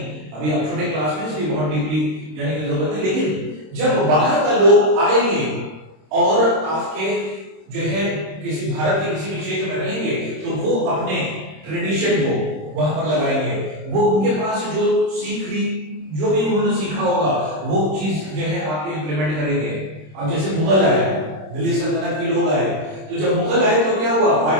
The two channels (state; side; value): late; left; 26 ms